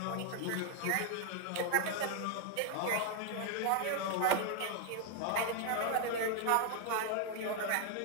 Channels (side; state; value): both; different; correlation 0.00